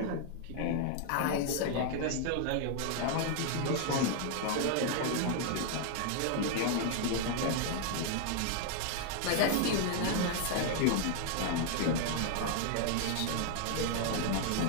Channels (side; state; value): both; different; correlation 0.00